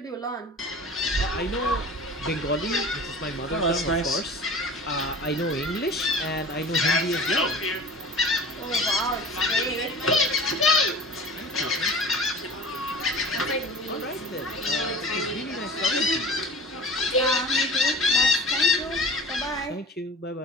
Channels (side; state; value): both; normal; correlation 0.39